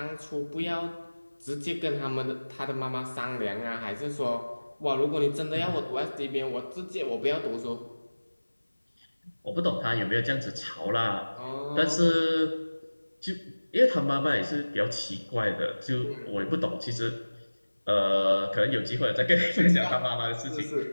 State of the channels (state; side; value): inverted; both; correlation -1.00